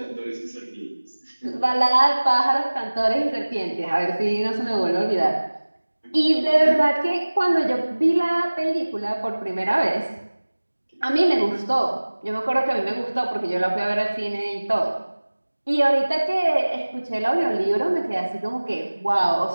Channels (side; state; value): both; inverted; correlation -1.00